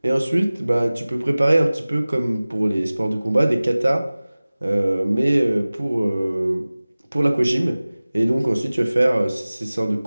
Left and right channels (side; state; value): both; inverted; correlation -0.98